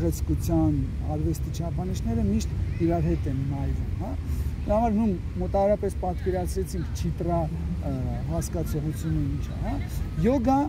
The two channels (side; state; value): both; identical; correlation 1.00